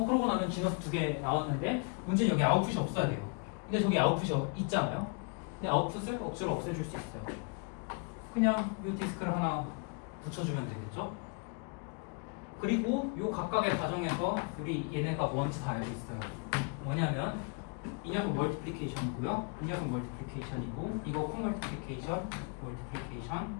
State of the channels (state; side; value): quieter; right; 35.5 dB